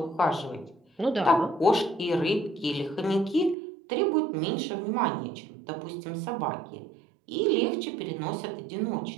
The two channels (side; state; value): left; drops out; at 3.6 s